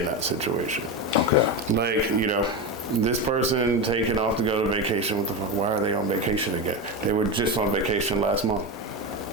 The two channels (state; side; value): normal; both; correlation 0.17